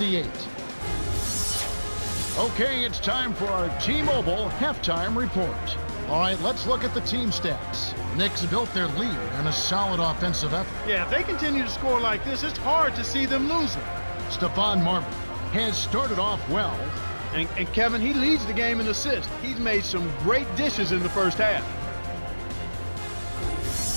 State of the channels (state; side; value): inverted; both; correlation -1.00